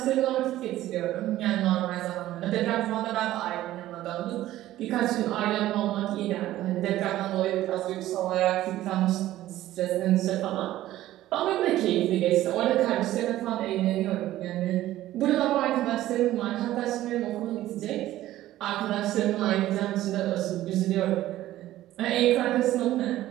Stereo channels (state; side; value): quieter; left; 14.6 dB